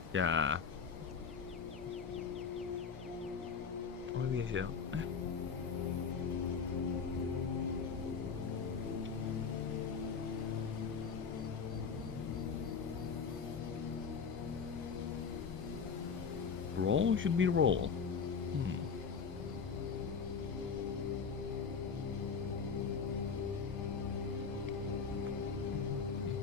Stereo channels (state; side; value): quieter; right; 5.9 dB